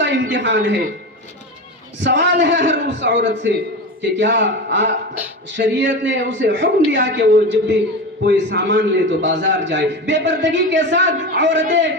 امتحان ہے۔ سوال ہے ہر اس عورت سے کہ کیا شریعت نے اسے حکم دیا کہ وہ جب بھی کوئی سامان لے تو بازار جائے؟ بے پردگی کے ساتھ عورتیں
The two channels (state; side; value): normal; both; correlation 0.24